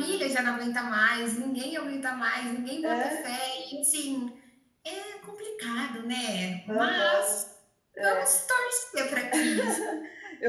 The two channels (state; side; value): identical; both; correlation 1.00